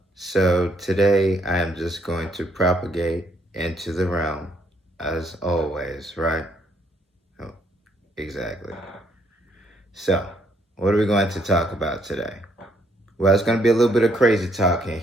So today I am just going to propagate into the realm, as always, right? Oh, exactly. So, what are we going to talk about today? Well, it's going to be a little bit of crazy talk in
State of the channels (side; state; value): both; normal; correlation 0.70